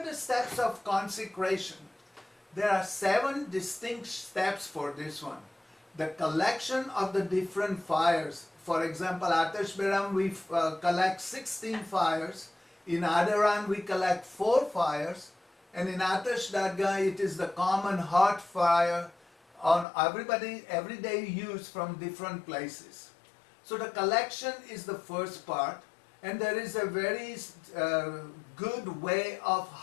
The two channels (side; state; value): right; drops out; at 19.9 s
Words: the steps of consecration? There are 7 distinct steps for this one. The collection of the different fires. For example, Atash Beram, we collect 16 fires. In Adaran, we collect 4 fires. And in Atash Dargah, it is the common hot fire on everyday use from different places. So the collection is the first part. And there is a very good way of